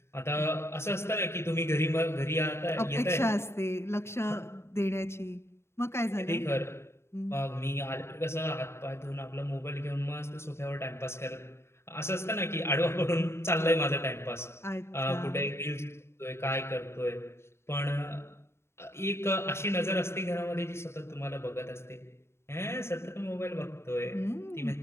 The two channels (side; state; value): right; late; 0.12 ms